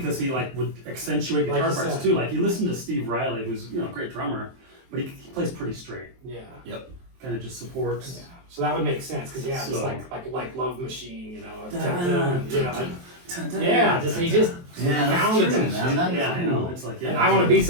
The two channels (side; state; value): left; late; 23 ms